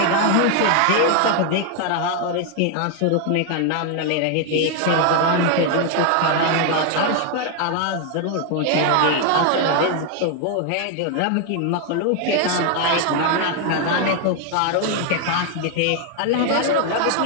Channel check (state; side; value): different; both; correlation 0.00